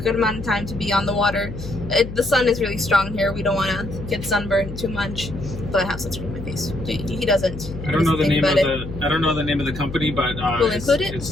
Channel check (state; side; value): noise; left; hum, 10 dB below the sound